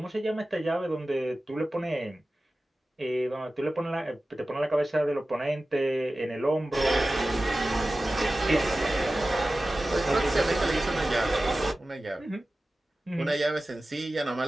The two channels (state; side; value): normal; both; correlation 0.95